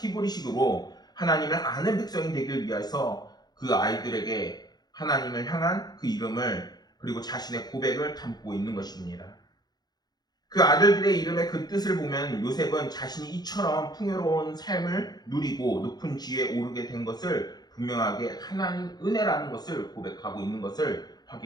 하나님을 아는 백성이 되길 위해서 그 아이들에게 하나님을 향한 그 이름을 그리고 자신의 고백을 담고 있는 것입니다. 그 아들들의 이름의 그 뜻을 보면 요셉은 자신이 이처럼 풍요로운 삶을 누리고 높은 지위에 오르게 된 것을 분명하게 하나님 은혜라는 것을 고백하고 있는 것을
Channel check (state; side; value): late; right; 0.19 ms